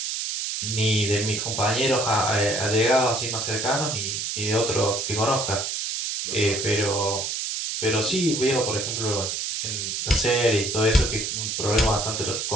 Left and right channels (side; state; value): right; noise; hiss, 3 dB below the sound